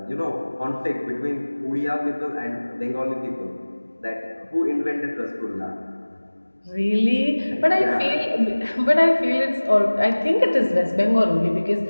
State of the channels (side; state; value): both; inverted; correlation -1.00